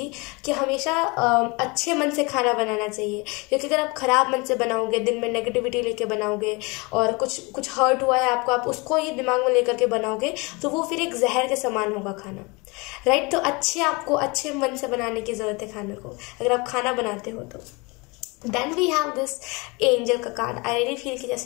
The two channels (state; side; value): quieter; right; 27.3 dB